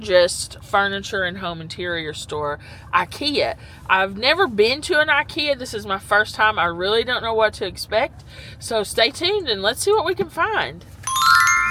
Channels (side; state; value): both; identical; correlation 1.00